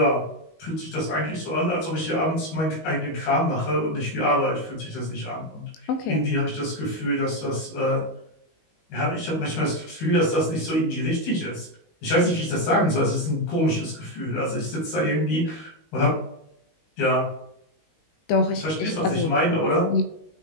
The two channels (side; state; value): right; late; 19 ms